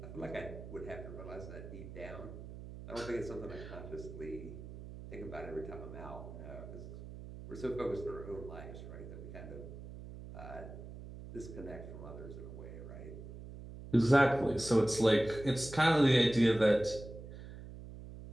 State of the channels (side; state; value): right; noise; hum, 12 dB below the sound